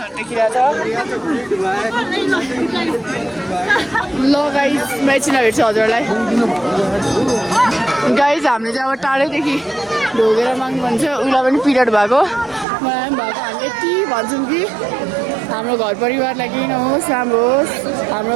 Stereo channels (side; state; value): left; drops out; at 12.7 s